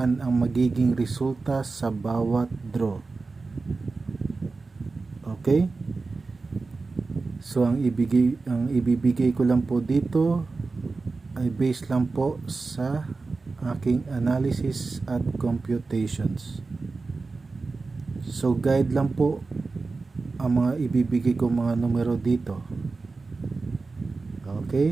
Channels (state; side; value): quieter; left; 3.9 dB